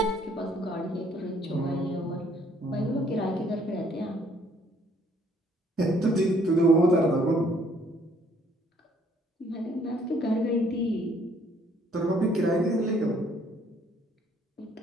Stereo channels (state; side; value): normal; both; correlation 0.63